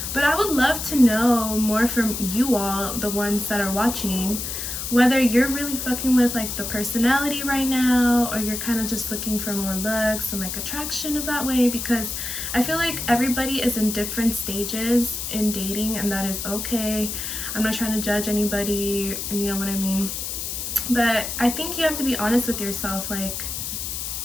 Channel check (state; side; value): noise; left; hiss, 5 dB below the sound